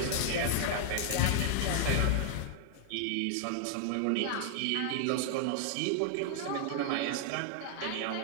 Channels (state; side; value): different; both; correlation 0.00